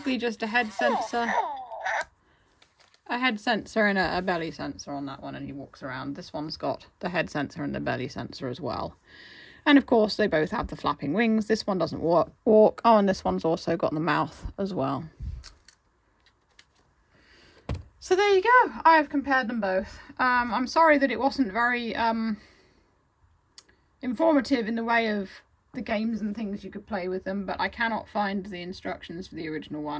just a head sensor, and a belly sensor on that one, and he walks around. This one's got the head sensor and the belly sensor as well. And of course, they both have the flapping wings. This one doesn't walk. Oh, and this one's also got the mouth as well. So there you go. I have compared them both. I'm sorry that it wasn't very informative in the way of the games and things you could play with them, but I cannot find the instructions for the original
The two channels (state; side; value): identical; both; correlation 1.00